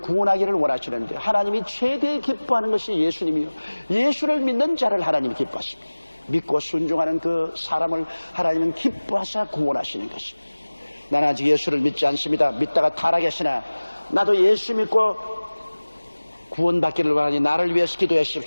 원하시는데, 하나님이 최대의 기뻐하는 것이 예수님이요, 예수를 믿는 자를 하나님이 기뻐하십니다. 믿고 순종하는 그 사람을 하나님은 기뻐하사 구원하시는 것입니다. 나는 아직 예수를 믿지 않습니다. 믿다가 타락했으나 나도 예수 믿고 구원받기를 원하니 나를 위해서 기도해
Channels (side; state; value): both; inverted; correlation -1.00